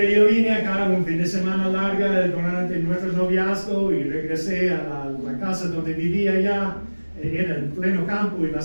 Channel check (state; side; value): inverted; both; correlation -1.00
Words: yo vine acá un fin de semana larga durante nuestro noviazgo y regresé a la casa donde vivía allá. Era en pleno campo y